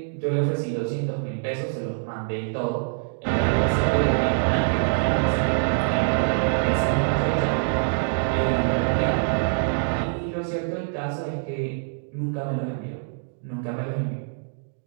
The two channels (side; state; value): left; silent; digital silence